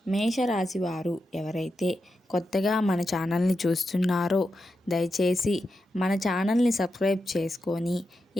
మేషరాశి వారు ఎవరైతే కొత్తగా మన ఛానల్ని చూస్తున్నారో దయచేసి మన ఛానల్ని సబ్స్క్రైబ్ చేసుకొని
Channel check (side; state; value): both; normal; correlation 0.88